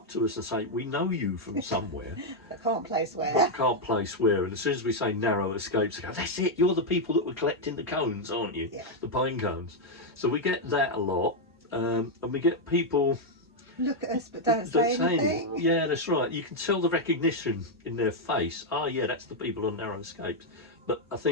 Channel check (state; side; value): normal; both; correlation 0.00